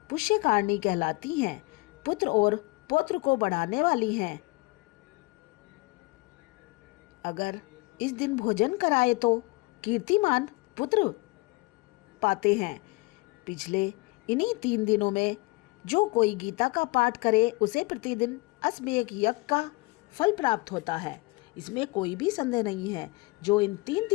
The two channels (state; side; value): quieter; right; 24.8 dB